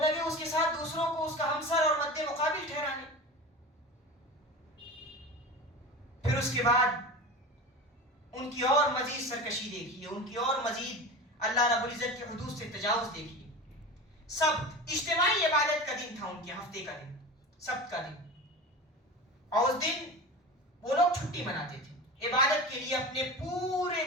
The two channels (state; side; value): normal; both; correlation 0.30